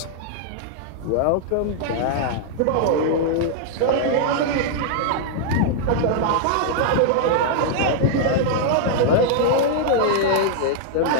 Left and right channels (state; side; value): different; both; correlation -0.01